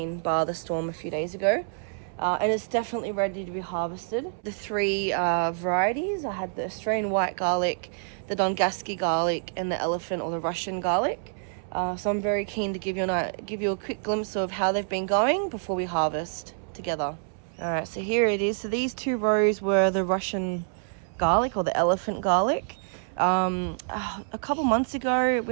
bar the storm a few days ago. And it's definitely ready to be harvested. The three varieties, I had the Australian white garlic, the Dongasky garlic, and the elephant or the Russian garlic. So I'm very keen to give you a quick glimpse of how they've been going before we harvest together. All right, so here it is. So these two rows were the Russian garlic or the elephant garlic. A couple months ago,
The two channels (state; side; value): silent; left; 58 dB below the other